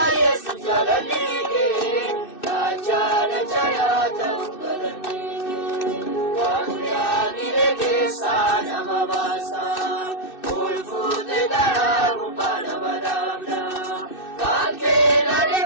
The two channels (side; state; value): right; late; 2.6 ms